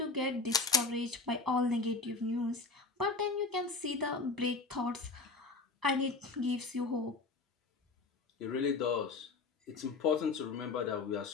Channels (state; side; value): quieter; right; 3.9 dB